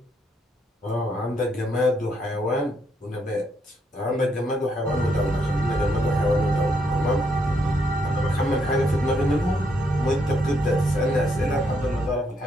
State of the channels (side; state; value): both; normal; correlation 0.75